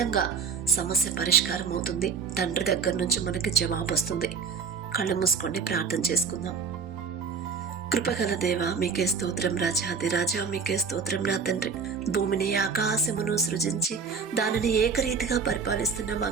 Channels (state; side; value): quieter; left; 5.7 dB